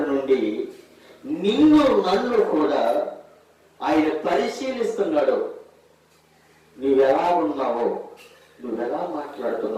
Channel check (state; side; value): identical; both; correlation 1.00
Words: నుండి నిన్ను నన్ను కూడా ఆయన పరిశీలిస్తున్నాడు. నువ్వెలా ఉన్నావో, నువ్వెలా